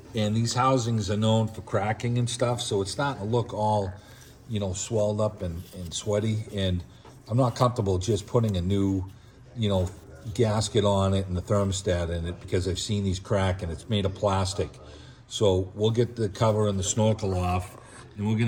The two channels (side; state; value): both; identical; correlation 1.00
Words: and these housings are known for cracking and stuff, so it's starting to look all, swelled up and sweaty, and I'm not comfortable just putting a new, gasket on it and the thermostat in it because I've seen these crack and it's made of plastic. So we'll get the cover and the snorkel off and we're